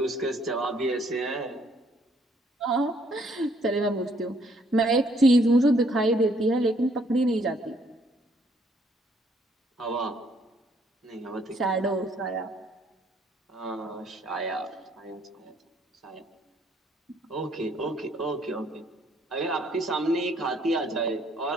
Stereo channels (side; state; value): both; normal; correlation 0.66